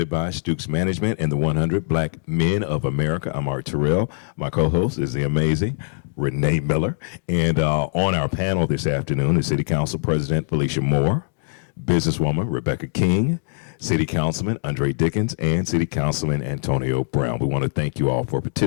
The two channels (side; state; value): right; silent; digital silence